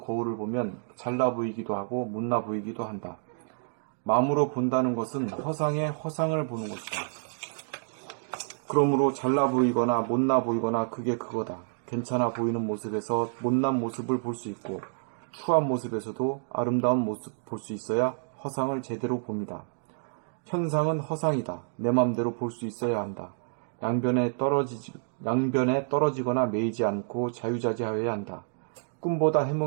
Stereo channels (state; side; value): silent; left; digital silence